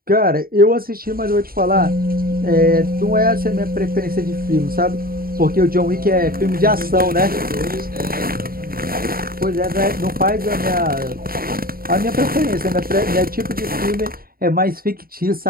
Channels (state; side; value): late; left; 0.43 ms